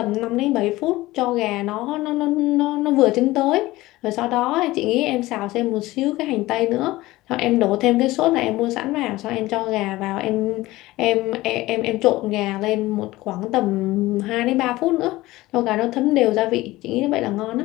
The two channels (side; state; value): right; quieter; 18.4 dB